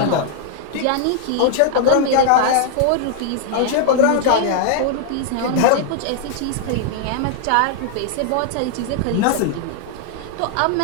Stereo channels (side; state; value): both; different; correlation -0.01